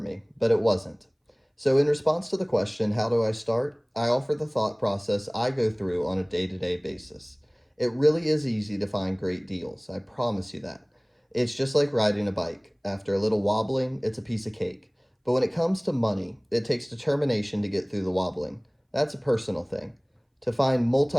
but it wasn't. So, in response to the question, how do I start? I offer the thought process I go through on a day to day basis. It really is easy to find great deals, I promise you that. It's just like riding a bike. After a little wobbling, it's a piece of cake. But when it comes to money, it takes determination to get through the wobbling. That's a personal thing. To find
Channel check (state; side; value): identical; both; correlation 1.00